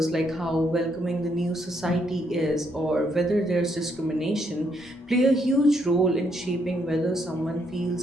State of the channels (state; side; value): normal; both; correlation 0.74